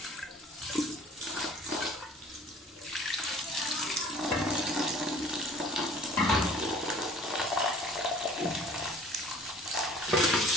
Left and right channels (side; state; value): both; normal; correlation 0.51